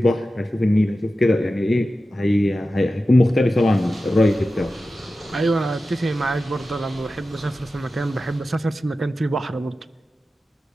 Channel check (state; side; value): normal; both; correlation 0.93